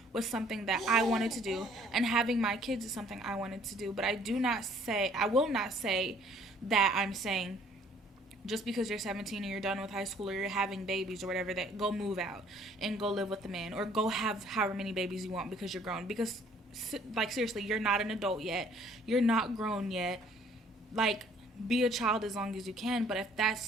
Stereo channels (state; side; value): normal; both; correlation 0.59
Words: was something that I wanted to do, and having my kids is something I wanted to do. But I will not say that I'm saying just because you're 17 and you're done with high school or you're having babies or whatever, that go move out and go live with the man or go have however many babies you want because you're grown. Because, like, seriously, you're not an adult yet. You're not grown yet. Like, be a child as long as you can. But if